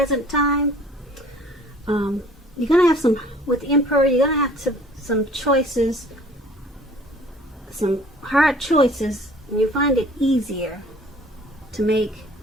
time, you're going to have some, with the Emperor, you're going to have some choices, some hard choices, and you find it easier to make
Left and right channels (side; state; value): both; normal; correlation 0.52